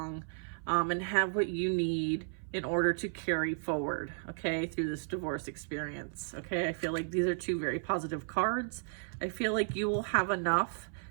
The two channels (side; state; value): left; silent; 55 dB below the other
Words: and have what you need in order to carry forward, okay, through this divorce experience, okay? I feel like these are two very positive cards. I feel like you will have enough